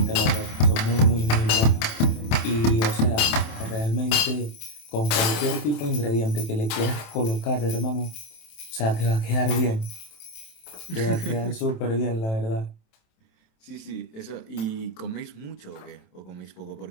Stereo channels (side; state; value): right; late; 27 ms